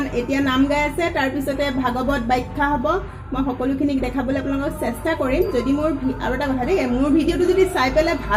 এতিয়া নাম গাই আছে, তাৰপিছতে ভাগৱত ব্যাখ্যা হ'ব। মই সকলোখিনিক দেখাবলৈ আপোনালোকক চেষ্টা কৰিম। যদি মোৰ আৰু এটা কথা দেই, মোৰ ভিডিঅ'টো যদি চাই পেলাই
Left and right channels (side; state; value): both; identical; correlation 1.00